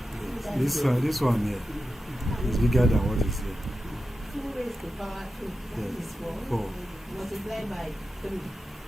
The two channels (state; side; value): normal; both; correlation 0.91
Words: This one here is bigger than what is here. 2 raised to power 2. That Yes. is 4. 4. Multiplied by 3.